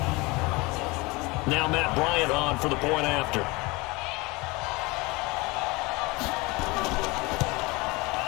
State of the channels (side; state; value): right; quieter; 24.5 dB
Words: Now Matt Bryant on for the point after.